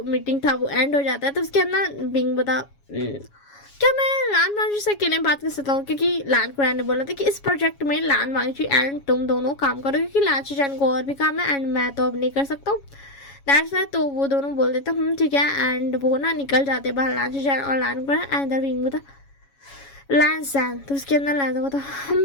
मीटिंग था वो एंड हो जाता है। तो उसके अंदर बिंग बता क्या मैं लान मांझी से अकेले बात कर सकता हूँ, क्योंकि लान कुरैन ने बोला था कि इस प्रोजेक्ट में लान मांझी एंड तुम दोनों काम करो क्योंकि लान शुजैन को और भी काम है एंड मैं तो अब नहीं कर सकता हूँ, दैट्स वाई। तो वो दोनों बोल देते ठीक है एंड वो ना निकल जाते बाहर लान शुजैन और लान कुरैन एंड इधर बिंग बता लैंसन। तो उसके अंदर लैंसन बता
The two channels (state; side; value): late; right; 7.2 ms